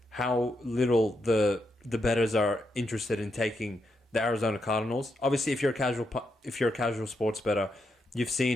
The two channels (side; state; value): both; normal; correlation 0.82